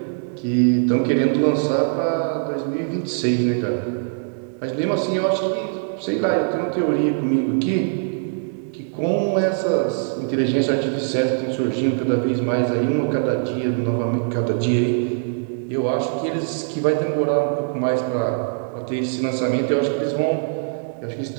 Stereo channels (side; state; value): left; silent; digital silence